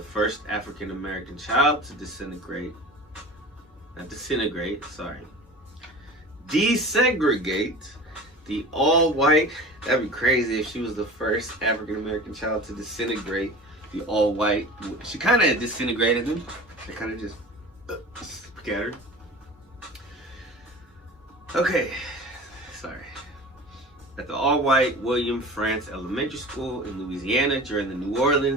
first African American child to desegregate, the all-white, that'd be crazy if she was the first African American child to disintegrate the all-white. She kind of disintegrated them. They kind of just scattered. Okay, sorry. At the all-white William Frantz Elementary School in Louisiana during the New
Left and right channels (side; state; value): both; normal; correlation 0.37